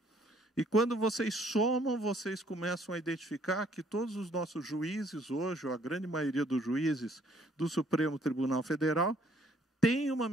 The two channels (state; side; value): normal; both; correlation 0.63